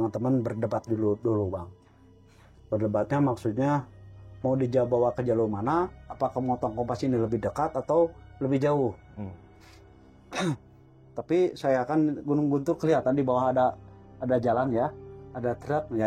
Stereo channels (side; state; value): both; identical; correlation 1.00